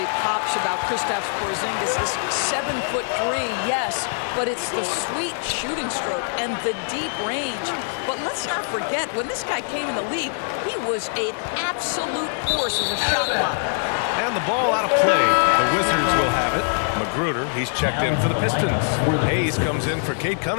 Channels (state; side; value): silent; right; 56 dB below the other